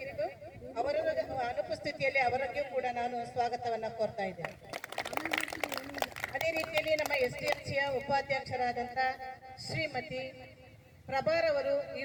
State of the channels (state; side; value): identical; both; correlation 1.00